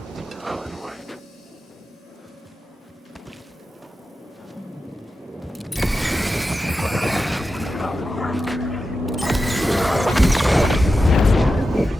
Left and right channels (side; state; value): both; normal; correlation 0.91